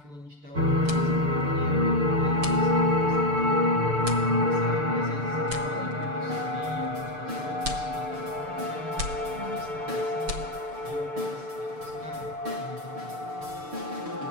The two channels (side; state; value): left; late; 6.8 ms